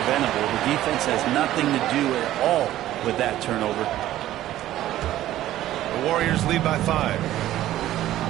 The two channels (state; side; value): quieter; left; 13.8 dB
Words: The defense has nothing to do at all with that turnover. The Warriors lead by 5.